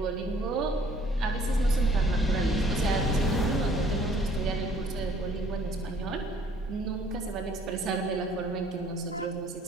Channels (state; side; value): normal; both; correlation 0.58